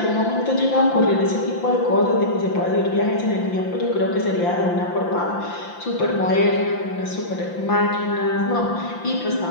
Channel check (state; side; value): late; right; 5.8 ms